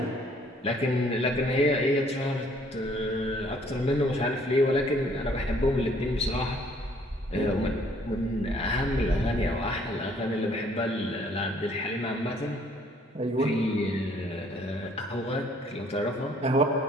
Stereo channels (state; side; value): normal; both; correlation 0.62